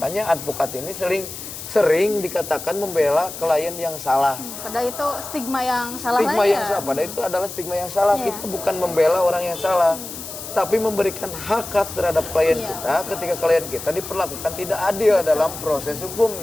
advokat ini sering dikatakan membela klien yang salah. Padahal itu stigma yang salah. Padahal itu adalah stigma yang salah. Kita bukan membela orang yang salah, tapi memberikan hak terhadap klien kita ketika klien kita diperlakukan tidak adil dalam proses hukum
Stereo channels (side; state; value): left; noise; hiss, 10 dB below the sound